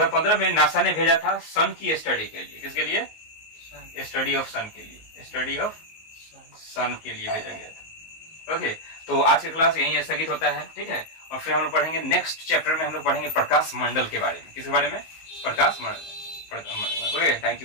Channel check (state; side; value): late; right; 19 ms